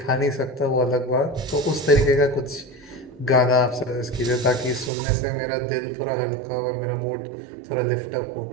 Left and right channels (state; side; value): drops out; left; at 4.9 s